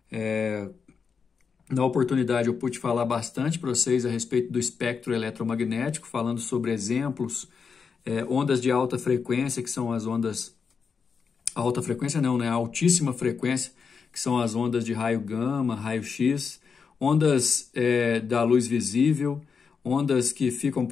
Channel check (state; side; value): quieter; right; 5.8 dB